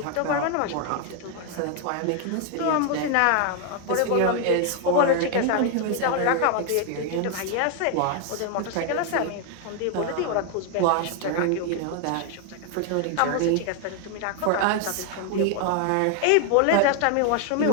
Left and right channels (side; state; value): both; different; correlation 0.00